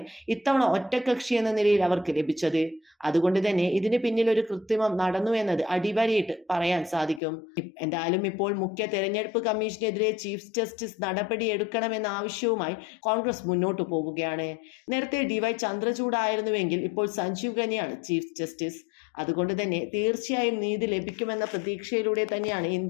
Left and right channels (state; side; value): drops out; right; at 7.2 s